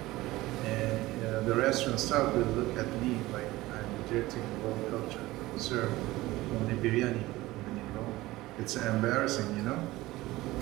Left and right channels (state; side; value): quieter; left; 18.3 dB